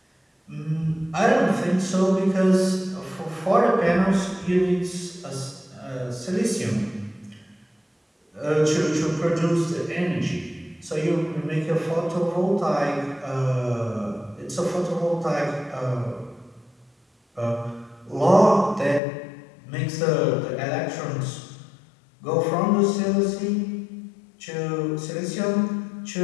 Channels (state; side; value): drops out; right; at 19.0 s